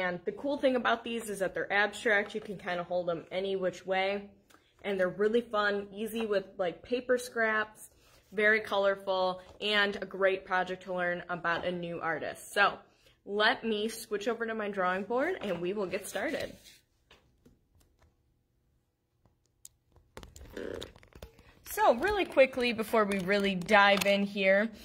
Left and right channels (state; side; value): identical; both; correlation 1.00